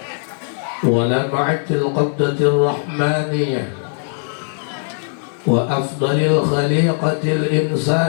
ولمعة القبضة الرحمانية وأفضل الخليقة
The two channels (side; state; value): right; silent; 58 dB below the other